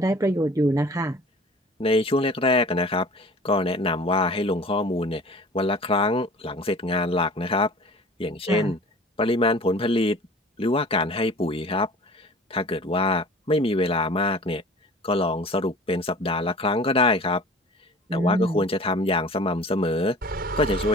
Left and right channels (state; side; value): normal; both; correlation 0.43